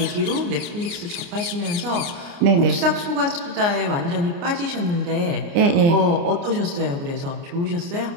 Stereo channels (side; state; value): left; late; 29 ms